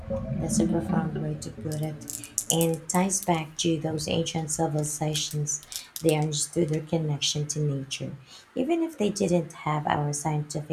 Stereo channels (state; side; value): identical; both; correlation 1.00